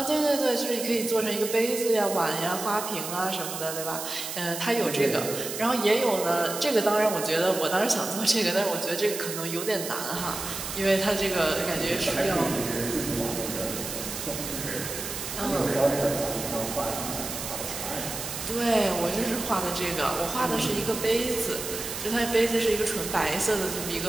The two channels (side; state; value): right; noise; hiss, 6 dB below the sound